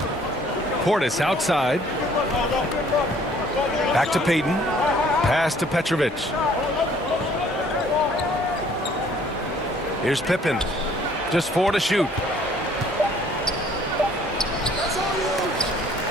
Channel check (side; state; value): both; normal; correlation 0.58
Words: Portis outside. Back to Payton. Pass to Petrovic. Here's Pippen. Just 4 to shoot.